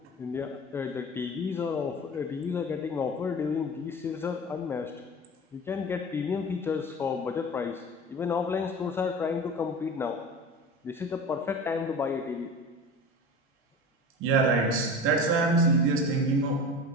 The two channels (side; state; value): both; normal; correlation 0.34